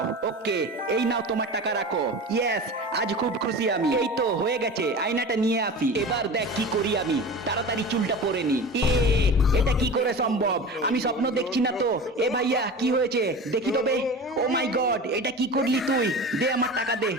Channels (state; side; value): normal; both; correlation 0.32